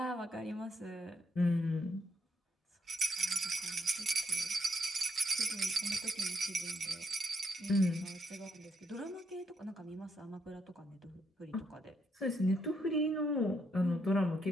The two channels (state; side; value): normal; both; correlation 0.77